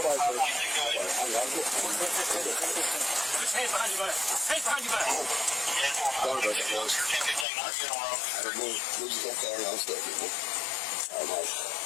Hands behind your back. Hands behind your back.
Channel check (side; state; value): right; drops out; at 7.5 s